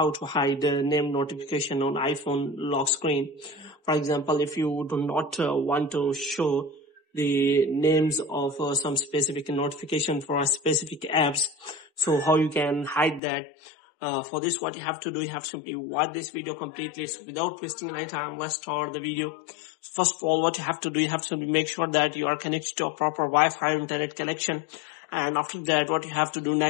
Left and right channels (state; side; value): drops out; right; at 13.2 s